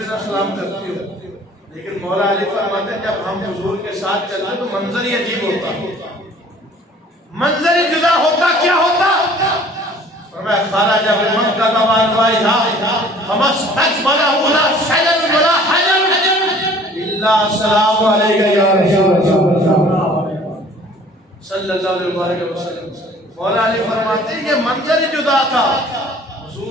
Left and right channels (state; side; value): normal; both; correlation 0.51